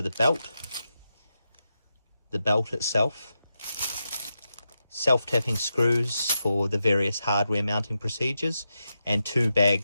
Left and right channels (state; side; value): inverted; both; correlation -0.88